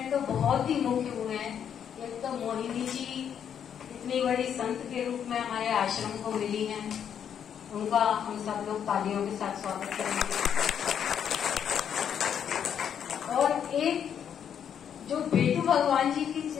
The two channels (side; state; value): right; quieter; 8.5 dB